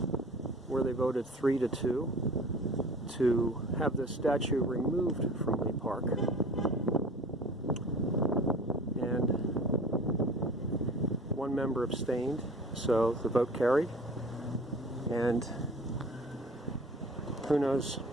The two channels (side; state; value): both; normal; correlation 0.44